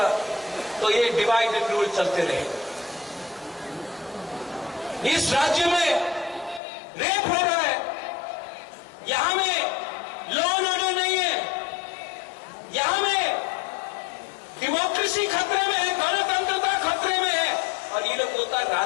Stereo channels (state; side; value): drops out; right; at 6.6 s